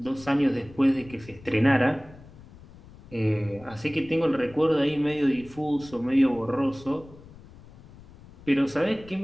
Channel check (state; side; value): noise; left; rumble, 21 dB below the sound